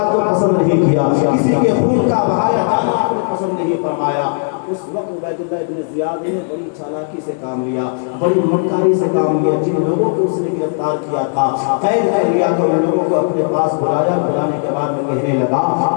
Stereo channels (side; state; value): right; silent; 62 dB below the other